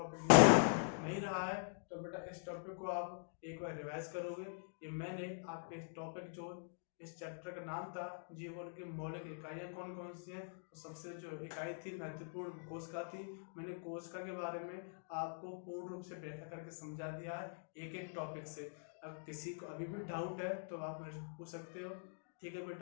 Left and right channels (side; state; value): right; silent; digital silence